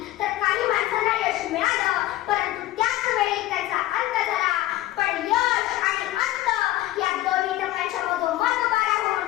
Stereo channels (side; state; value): right; quieter; 15.7 dB